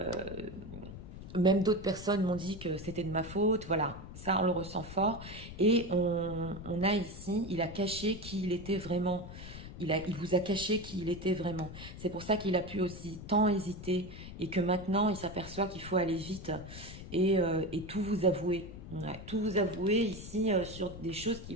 même d'autres personnes m'ont dit que c'était de ma faute. Voilà, ça, on le ressent fort. Et on a ici, il a caché qui il était vraiment. Il vous a caché qui il était vraiment. C'est pour ça qu'il a pu aussi tant hésiter et que maintenant, il s'aperçoit qu'il faut aller vite et tout vous avouer. Ouais, tout vous avouer ici sur des choses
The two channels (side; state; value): left; noise; rumble, 12 dB below the sound